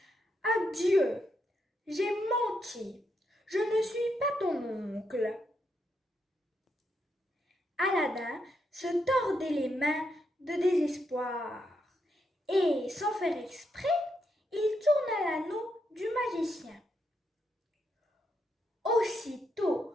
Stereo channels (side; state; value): both; normal; correlation 0.80